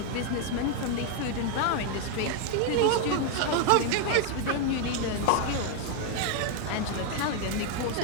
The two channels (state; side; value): different; both; correlation 0.01